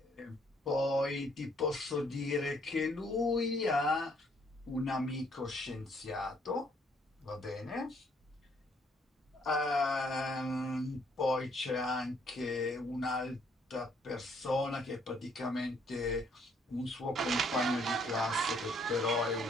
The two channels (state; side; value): normal; both; correlation 0.66